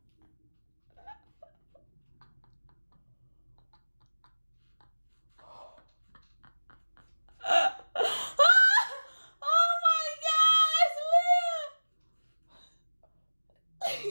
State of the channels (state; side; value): inverted; both; correlation -1.00